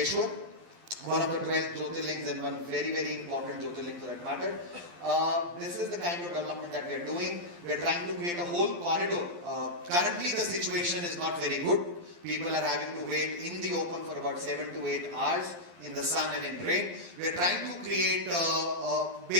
one of the 12 Jyotirlings and one very, very important Jyotirling for that matter. This is the kind of development that we are doing. We are trying to create a whole corridor. Currently the situation is not very good. People are having to wait in the open for about 7 to 8 hours in the sun and in rain. We are trying to create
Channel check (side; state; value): left; late; 12 ms